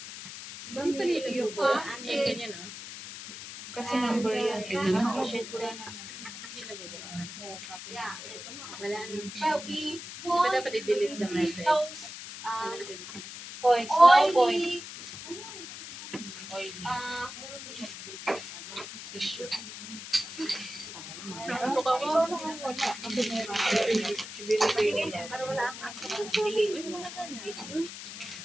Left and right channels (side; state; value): left; noise; hiss, 11 dB below the sound